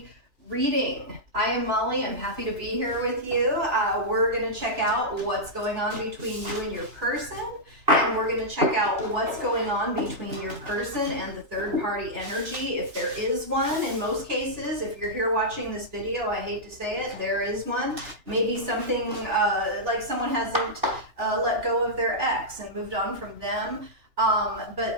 reading. I am Molly. I'm happy to be here with you. We're going to check out what's going on between you and your person, and we're going to check out what's going on between your person and the third party energy, if there is one. In most cases, if you're here watching this video, I hate to say it, there is one. Maybe something like someone hasn't let go of their ex and moved on from them.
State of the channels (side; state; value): left; late; 3.0 ms